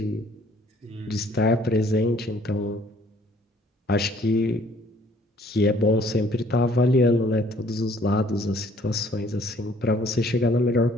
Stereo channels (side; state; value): both; normal; correlation 0.59